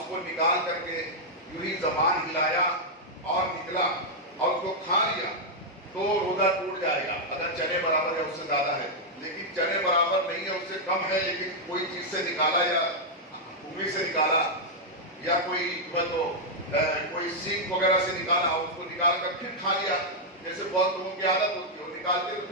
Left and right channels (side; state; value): both; normal; correlation -0.04